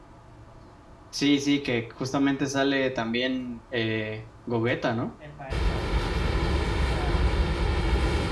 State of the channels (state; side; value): identical; both; correlation 1.00